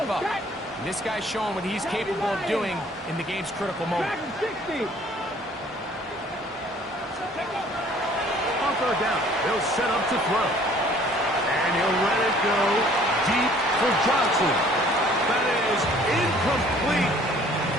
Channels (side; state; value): both; normal; correlation 0.55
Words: up. And this guy's showing what he's capable of doing in the game's critical moment. On third down, they'll set up to throw. And he'll let it go deep for Johnson. That is incomplete.